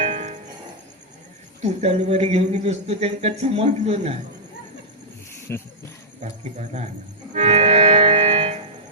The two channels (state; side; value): normal; both; correlation -0.11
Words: तू तलवारी घेऊन बसतो त्यांना समजलो नाही बाकी बरा